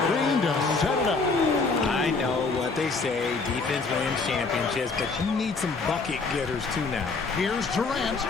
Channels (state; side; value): quieter; right; 4.1 dB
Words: Green to set it up. I know what they say, defense wins championships, but you need some bucket getters too now. Here's Durant,